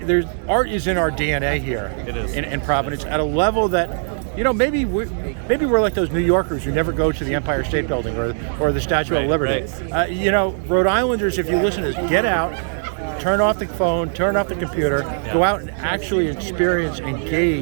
art is in our DNA here. It is. In Providence at a level that maybe we're like those New Yorkers who never go to the Empire State Building or the Statue of Liberty. Right. Rhode Islanders, if you listen to this, get out, turn off the phone, turn off the computer, go out and actually experience,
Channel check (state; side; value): silent; left; digital silence